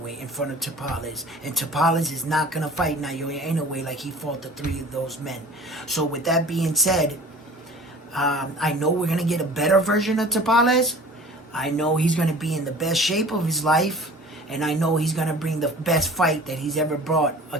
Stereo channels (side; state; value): both; normal; correlation 0.43